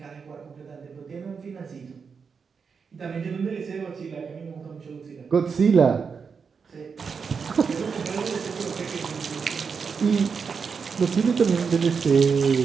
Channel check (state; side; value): quieter; left; 5.7 dB